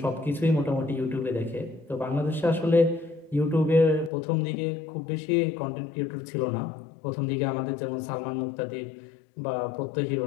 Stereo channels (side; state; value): right; drops out; at 4.1 s